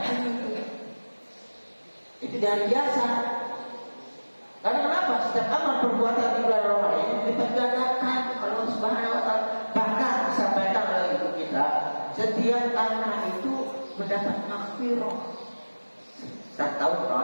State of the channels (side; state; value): both; inverted; correlation -1.00